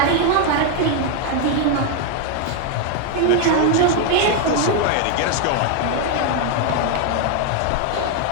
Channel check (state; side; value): different; both; correlation 0.01